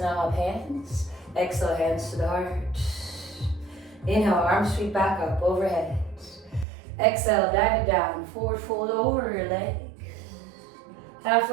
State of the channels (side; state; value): left; drops out; at 6.7 s